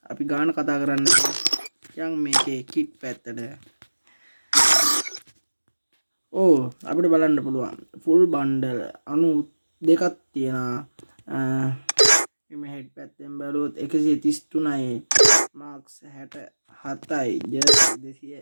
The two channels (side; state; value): both; inverted; correlation -1.00